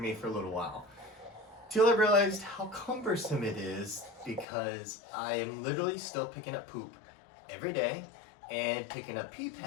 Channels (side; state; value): right; drops out; at 4.5 s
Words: for a little while. Till I realized how cumbersome it is because I am literally still picking up poop every day and picking up pee